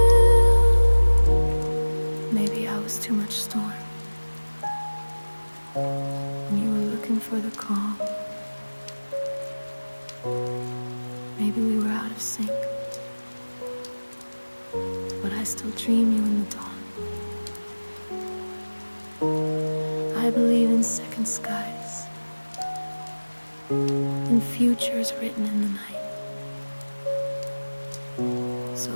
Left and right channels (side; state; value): both; inverted; correlation -1.00